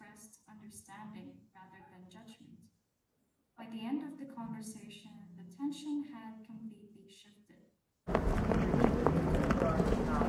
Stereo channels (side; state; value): both; identical; correlation 1.00